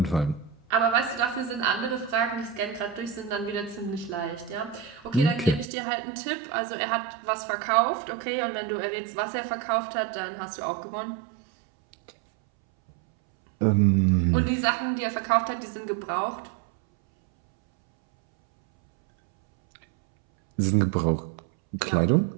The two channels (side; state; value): left; drops out; at 5.7 s